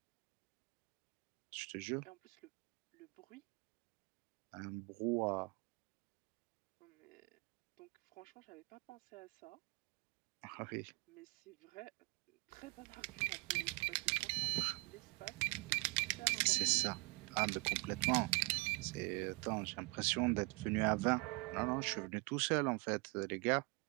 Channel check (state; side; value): quieter; left; 28.2 dB